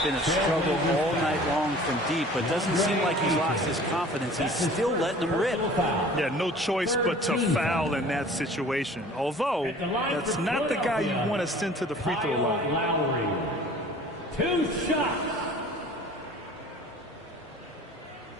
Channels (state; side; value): normal; both; correlation 0.47